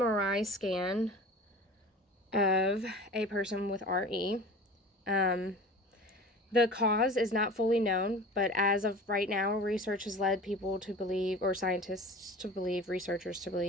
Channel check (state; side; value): normal; both; correlation 0.38